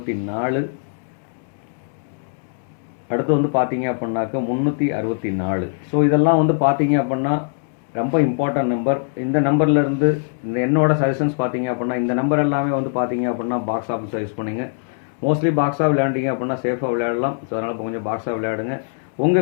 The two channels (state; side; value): silent; right; digital silence